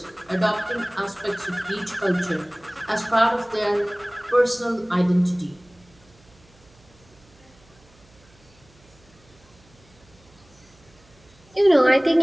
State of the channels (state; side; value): noise; right; hum, 29 dB below the sound